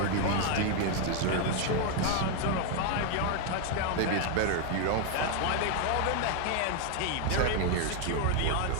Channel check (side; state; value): both; different; correlation 0.01